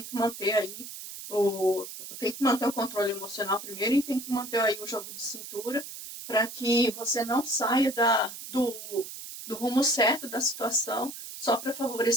que manter aí o controle emocional primeiro, e tem que manter aí o jogo de cintura para que você não saia do rumo certo da situação só para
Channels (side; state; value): right; noise; hiss, 11 dB below the sound